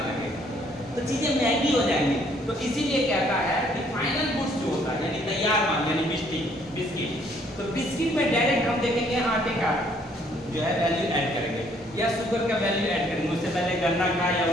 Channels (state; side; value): normal; both; correlation 0.64